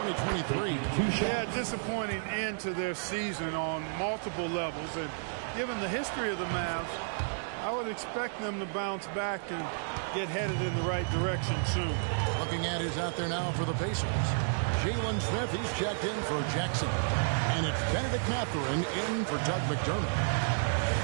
Yeah, disappointing end to their season on multiple levels. And given the history of the Mavs, I would expect them to bounce back and get headed in the right direction soon. Looking at who's out there now for the Pacers. Jalen Smith, he's checked in for Jackson. And it's Benedict Mathurin in for Doug McDermott.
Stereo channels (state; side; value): silent; left; digital silence